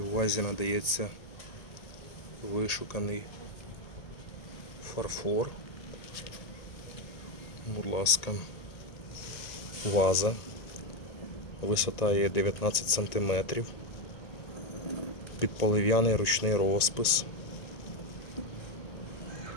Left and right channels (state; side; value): late; right; 1.8 ms